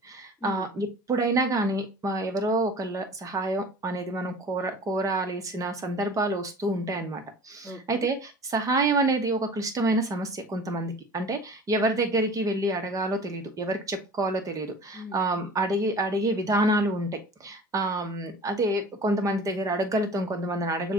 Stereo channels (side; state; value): both; normal; correlation 0.42